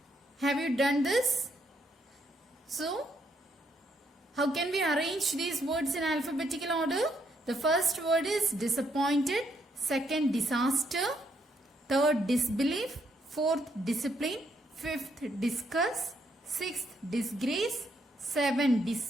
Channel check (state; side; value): normal; both; correlation 0.74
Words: have you done this? So, how can we arrange these words in alphabetical order? The first word is disappointed, second disaster, third disbelief, fourth discipline, fifth discuss, sixth disgrace, 7